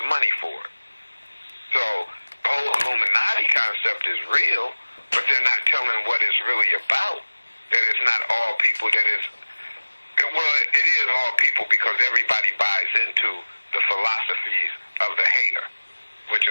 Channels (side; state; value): both; inverted; correlation -1.00